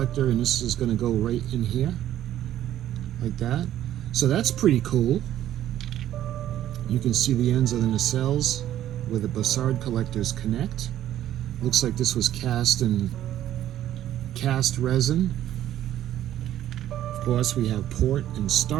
and this is going to go right in here like that. So that's pretty cool. You can see the ends of the nacelles where the Bassard collectors connect. Looks like this was cast in cast resin. Of course, we have port and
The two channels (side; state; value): left; quieter; 12.2 dB